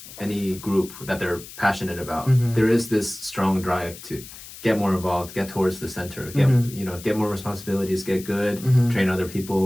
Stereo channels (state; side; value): noise; left; hiss, 15 dB below the sound